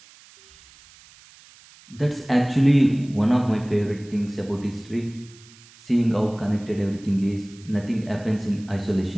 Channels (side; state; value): right; noise; hiss, 24 dB below the sound